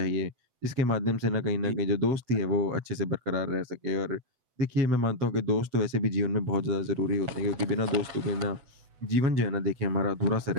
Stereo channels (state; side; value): late; left; 8.0 ms